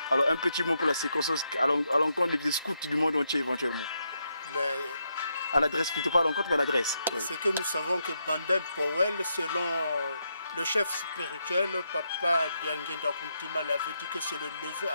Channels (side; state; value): both; inverted; correlation -0.80